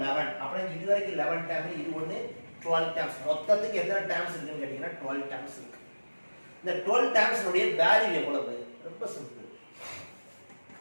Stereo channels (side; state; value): both; inverted; correlation -1.00